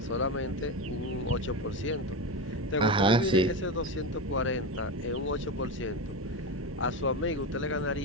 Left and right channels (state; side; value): normal; both; correlation 0.19